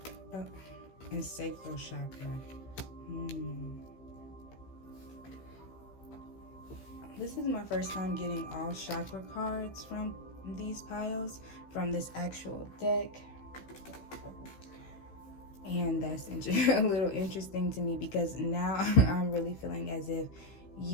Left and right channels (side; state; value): right; late; 15 ms